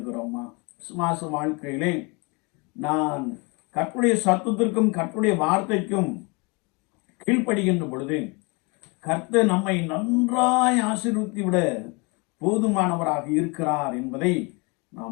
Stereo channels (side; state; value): right; quieter; 29.6 dB